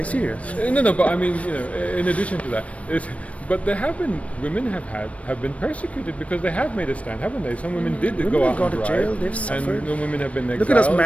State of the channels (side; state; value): right; late; 0.065 ms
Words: serious. No, but I mean, in addition to that, but there have been women have been persecuted because they have made a stand, haven't they? Some women did Women go have out gone and to drive, jail. They've suffered. and no women have been exiled. Look at us